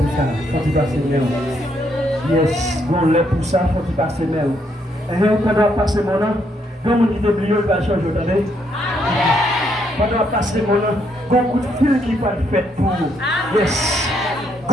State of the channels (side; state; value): both; normal; correlation 0.74